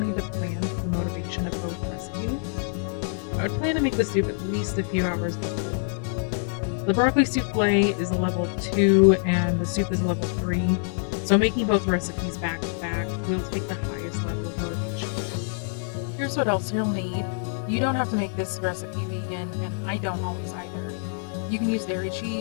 to plan for the motivation of both recipes. I would plan to make the soup at least a few hours before. The broccoli souffle is a level 2 and the soup is a level 3, so making both recipes back to back will take the highest level of motivation. Here's what else you'll need. You don't have to make this recipe vegan, and I don't always either. You can use dairy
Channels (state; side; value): silent; right; 61 dB below the other